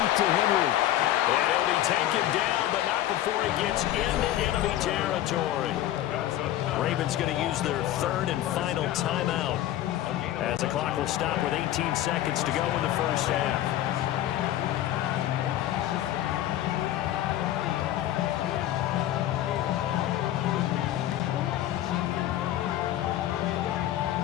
to Henry. And he'll be taken down, but not before he gets into enemy territory. Ravens going to use their 3rd and final timeout as the clock will stop with 18 seconds to go in the first half.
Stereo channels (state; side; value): quieter; right; 13.2 dB